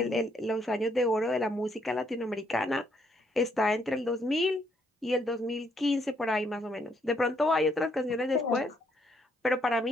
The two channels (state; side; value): normal; both; correlation 0.72